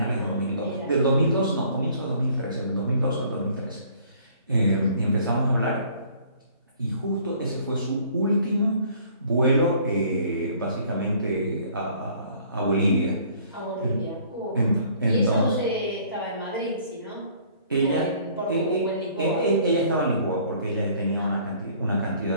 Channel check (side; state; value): both; inverted; correlation -0.56